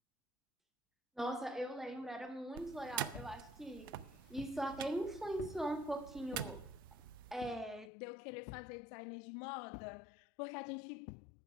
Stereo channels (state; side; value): drops out; right; at 7.9 s